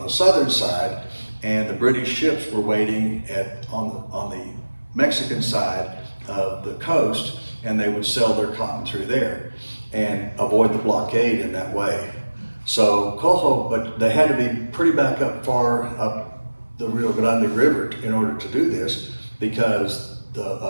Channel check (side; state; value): both; inverted; correlation -1.00